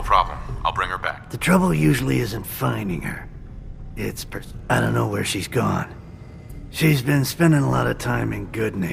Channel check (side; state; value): both; identical; correlation 1.00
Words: problem. I'll bring her back. The trouble usually isn't finding her. It's I don't know where she's gone. She's been spending a lot of time in